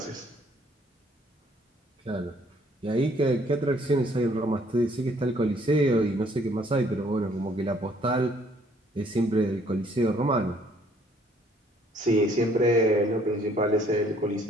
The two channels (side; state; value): both; normal; correlation 0.62